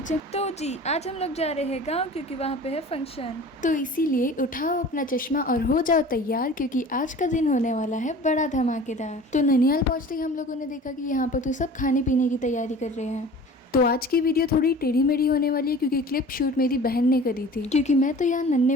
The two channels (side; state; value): both; normal; correlation 0.42